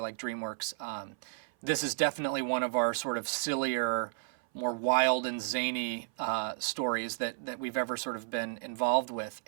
like DreamWorks. This is definitely one of our sort of sillier, more wild and zany stories that we've ever sort of been involved with.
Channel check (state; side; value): silent; left; 56 dB below the other